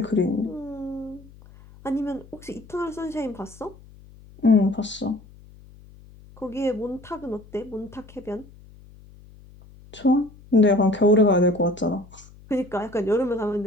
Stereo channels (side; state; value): left; noise; hum, 22 dB below the sound